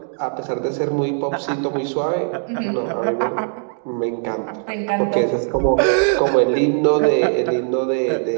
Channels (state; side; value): silent; left; 62 dB below the other